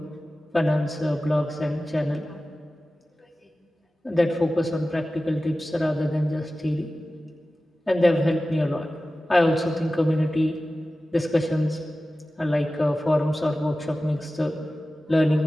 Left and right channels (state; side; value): normal; both; correlation 0.95